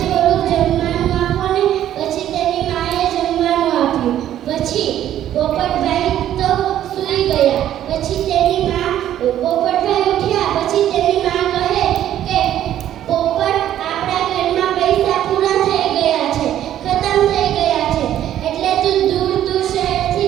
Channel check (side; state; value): left; quieter; 11.7 dB